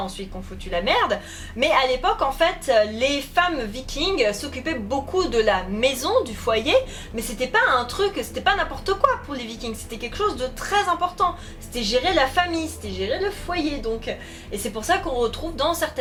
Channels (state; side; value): identical; both; correlation 1.00